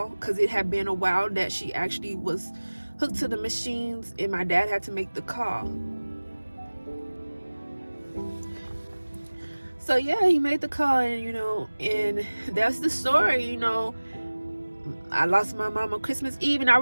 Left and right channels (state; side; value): inverted; both; correlation -1.00